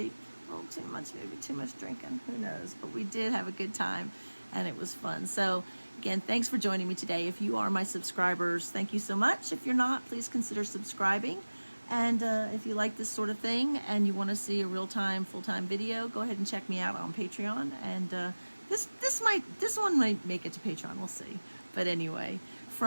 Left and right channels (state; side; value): inverted; both; correlation -1.00